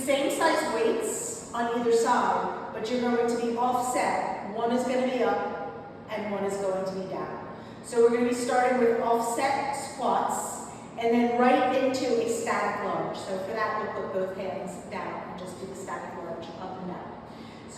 size weights on either side, but you're going to be offset. One is going to be up and one is going to be down. So we're going to be starting with offset squats and then right into a static lunge. So for that, we'll put both hands down and just do the static lunge up and down.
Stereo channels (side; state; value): both; identical; correlation 1.00